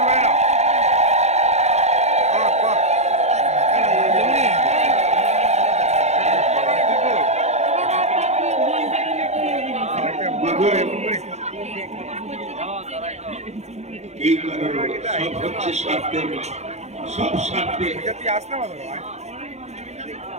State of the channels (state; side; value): late; left; 0.32 ms